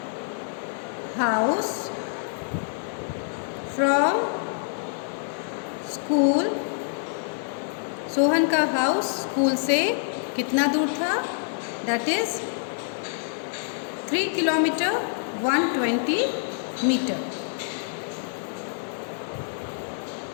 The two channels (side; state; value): right; silent; digital silence